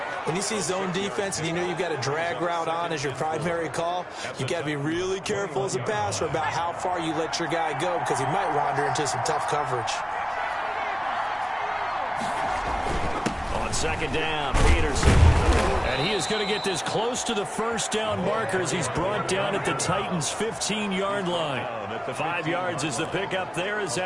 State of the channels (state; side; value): identical; both; correlation 1.00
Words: When you see zone defense and you know you've got a drag route on as your primary call, you've got to be really careful as a passer about how far you let your guy go because he might wander into some tough coverage. On 2nd down, Peterson. And he is going to get this close to the 1st down marker as he's brought down at the Titans' 15-yard line. 5 yards is the pickup there as